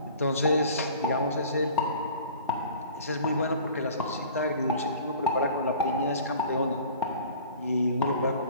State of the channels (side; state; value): both; inverted; correlation -0.45